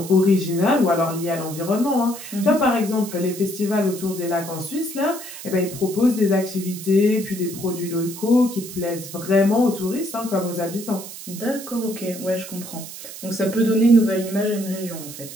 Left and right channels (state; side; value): noise; right; hiss, 12 dB below the sound